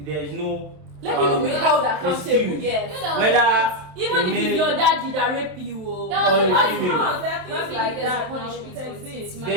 is no. Let people be held accountable. excuse. Yes. Whether Even a if male- it's your daddy that rape you, oh. That or was a what female. No, there are things Don't like think there's a that. punishment Now, for it it. exists. It's There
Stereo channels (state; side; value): late; left; 27 ms